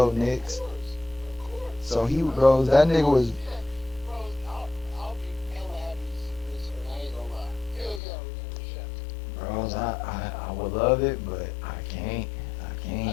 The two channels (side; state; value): right; drops out; at 8.0 s